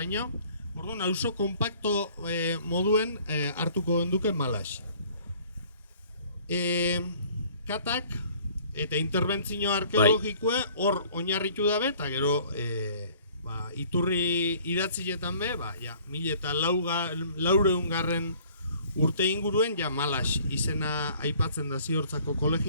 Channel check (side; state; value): both; inverted; correlation -0.55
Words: Orduan, auzo kompakto moduen hartuko genduke Malas. Katak eta interbentzio arkeologikoe hor oinarritu dabe, eta gero iturri idatzietan be, 1400 urte inguruen Malas izena aipatzen da ziortzako